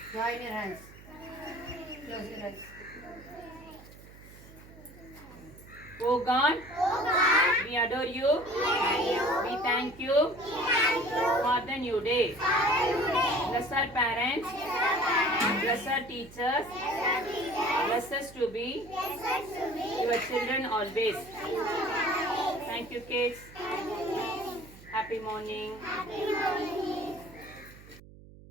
Join your hands. Close your eyes. Oh God, we adore you. We thank you for the new day. Bless our parents. Bless our teachers. Bless us to be your children always. Thank you, kids. Happy morning.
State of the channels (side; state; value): right; noise; hum, 20 dB below the sound